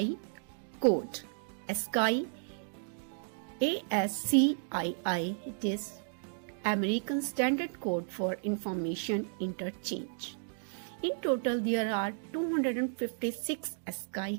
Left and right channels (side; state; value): left; silent; digital silence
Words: code. ASCII, ASCII, it is American Standard Code for Information Interchange. In total, there are 256